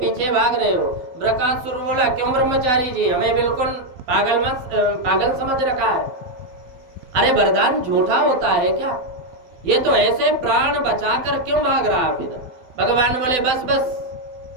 भाग रहे हो। ब्रकासुर बोला, क्यों ब्रह्मचारी जी, हमें बिल्कुल पागल समझ रखा है? अरे वरदान झूठा होता है क्या? ये तो ऐसे प्राण बचाकर क्यों भाग रहा फिर? भगवान बोले, बस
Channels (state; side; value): late; left; 12 ms